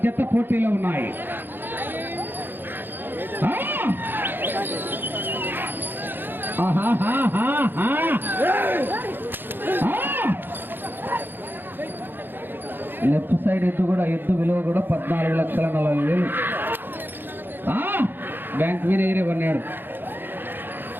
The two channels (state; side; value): late; left; 0.097 ms